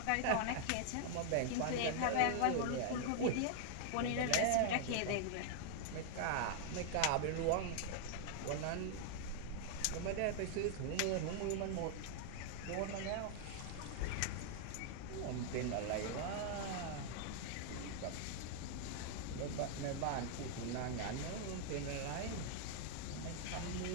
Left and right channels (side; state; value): both; different; correlation 0.00